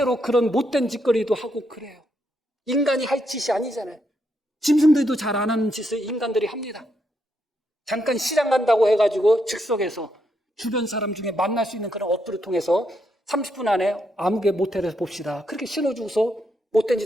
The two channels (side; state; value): both; normal; correlation 0.79